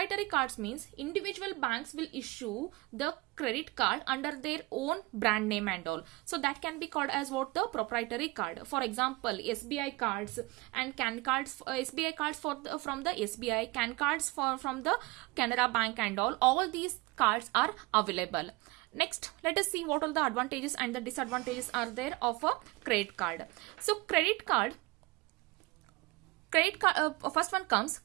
cards means individual banks will issue the credit card under their own brand name and all. So that can be called as what? The proprietary card. For example, SBI cards and CAN cards, SBI cards from the SBI, CAN cards from the Canara Bank and all these cards are available. Next, let us see what all the advantages and the disadvantages are there of a credit card. So credit card, first one comes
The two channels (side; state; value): left; quieter; 23.6 dB